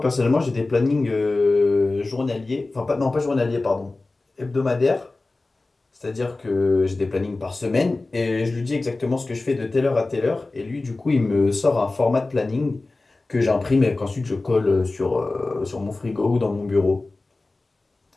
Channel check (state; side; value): quieter; right; 3.3 dB